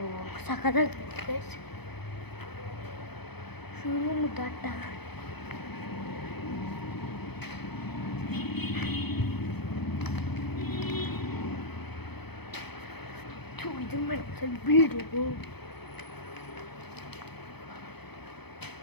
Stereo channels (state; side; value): late; right; 0.98 ms